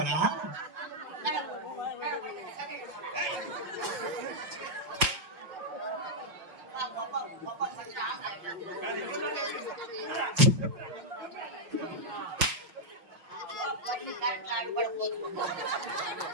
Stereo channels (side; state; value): left; late; 5.7 ms